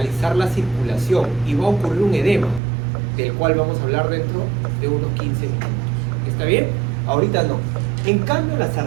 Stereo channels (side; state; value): left; drops out; at 2.6 s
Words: la circulación y va a ocurrir un edema, del cual vamos a hablar dentro de unos 15 minutos. ¿Está bien? Ahorita no. En cambio, las